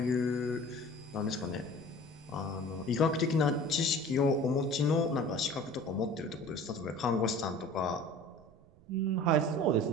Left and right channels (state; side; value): noise; right; rumble, 26 dB below the sound